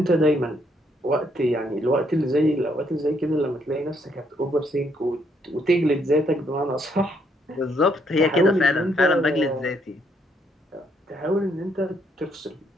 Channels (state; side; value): normal; both; correlation 0.72